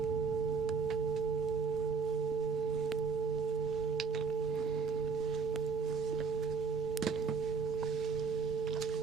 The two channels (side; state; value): left; quieter; 5.6 dB